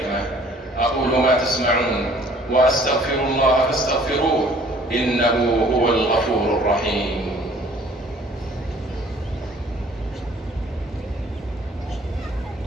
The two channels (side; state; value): both; normal; correlation 0.55